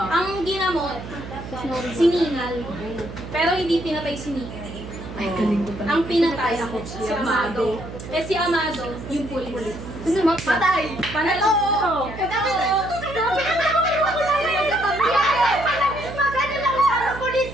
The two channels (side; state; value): right; noise; hum, 11 dB below the sound